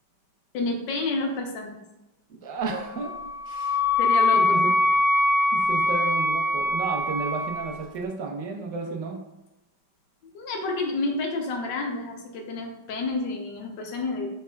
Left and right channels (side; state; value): right; late; 5.1 ms